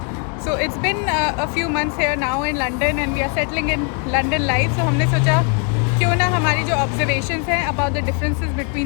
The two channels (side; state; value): right; quieter; 37.8 dB